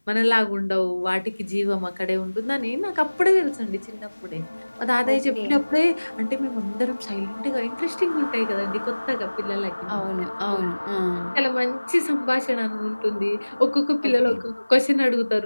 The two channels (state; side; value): inverted; both; correlation -1.00